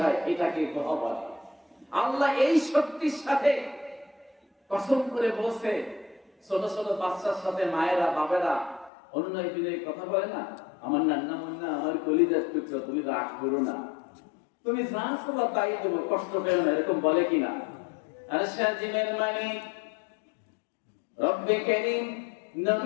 হয়, এটাকে দোহা বলে। আল্লাহ এই শক্তির সাথে কসম করে বলছে। ছোট ছোট বাচ্চার সাথে মায়েরা বাবেরা অনুনয় বিনয় কথা বলে না, আমার নান্না মুন্না, আমার কলিজার টুকরো, তুমি রাগ করো না, তুমি যা চাও তাই দেবো, কষ্ট পেও না, এরকম বলে কিনা? আর সাজিমের মানে রব্বে কারীম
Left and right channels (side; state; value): right; drops out; at 8.9 s